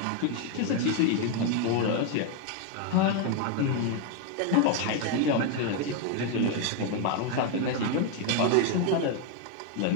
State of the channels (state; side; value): different; both; correlation 0.01